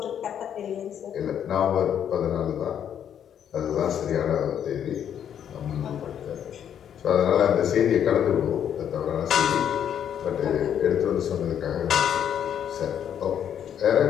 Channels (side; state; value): right; quieter; 9.2 dB